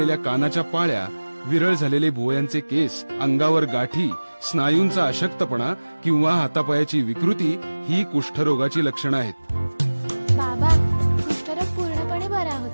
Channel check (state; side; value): inverted; both; correlation -1.00